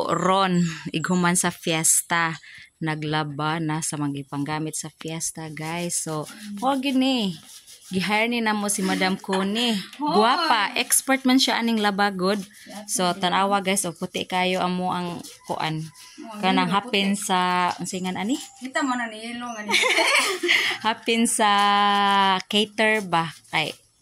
ron iguman sa fiesta. Naglaba na sa mga panggamit sa fiesta, guys. So, wag gini. Gihire ni namo si Madam Connie. Guwapa, expert man siya aning labagod. So, tanawa guys, o puti kayo amo ang kuan. Kanang hapin sa singan ani? Kita mo na ni ilong ani. Hapin sa cater ba? Kay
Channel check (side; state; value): both; identical; correlation 1.00